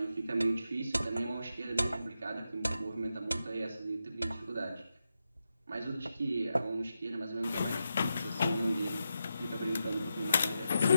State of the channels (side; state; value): both; inverted; correlation -0.87